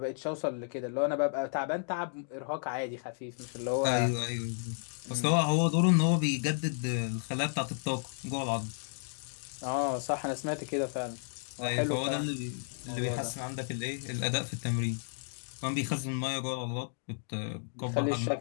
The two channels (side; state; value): right; silent; digital silence